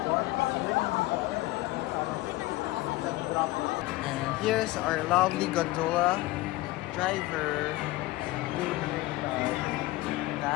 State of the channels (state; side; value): quieter; right; 18.6 dB